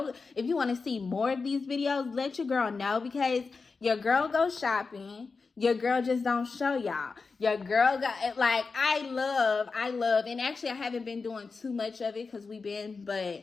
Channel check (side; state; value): right; quieter; 4.5 dB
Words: if you want to see more of these videos. Let your girl know because your girl goes shopping. Your girl just don't show y'all. Your girl got, like, I love, and actually I haven't been doing too much of it because but